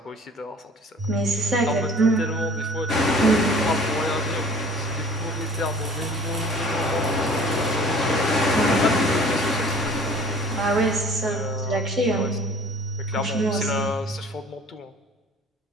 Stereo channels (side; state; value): both; normal; correlation 0.48